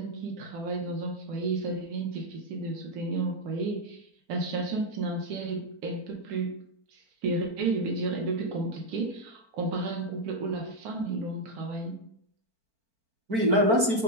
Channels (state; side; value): late; left; 4.4 ms